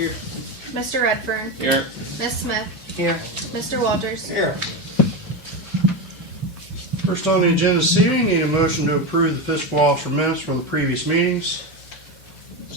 Mr. Redfern. Here. Ms. Smith. Here. Mr. Walters. Here. First on the agenda this evening, need a motion to approve the fiscal officer minutes from the previous meetings.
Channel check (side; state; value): both; normal; correlation 0.16